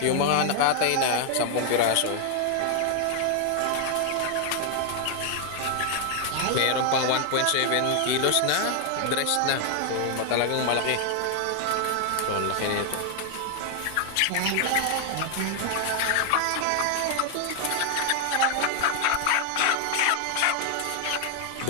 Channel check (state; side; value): different; both; correlation 0.00